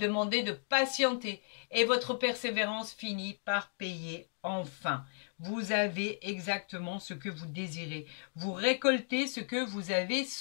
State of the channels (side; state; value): right; silent; digital silence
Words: de patienter et votre persévérance finit par payer enfin. Vous avez exactement ce que vous désirez. Vous récoltez ce que vous avez